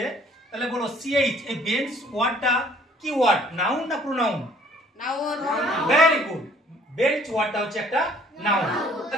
তাহলে বলো সিএইচ, এই বেঞ্চ ওয়ার্ডটা কি ওয়ার্ড, নাউন না pronoun? Noun. Very good, bench ওয়ার্ডটা হচ্ছে একটা নাউন।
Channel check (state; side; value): normal; both; correlation 0.57